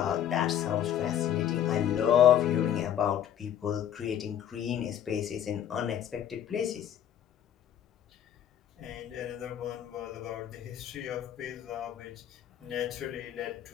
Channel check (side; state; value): right; quieter; 10.2 dB